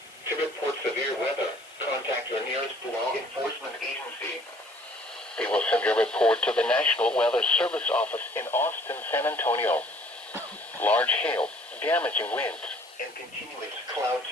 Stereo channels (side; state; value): left; noise; hiss, 24 dB below the sound